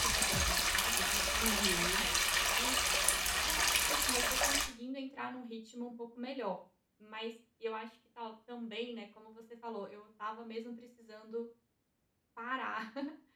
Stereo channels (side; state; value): both; identical; correlation 1.00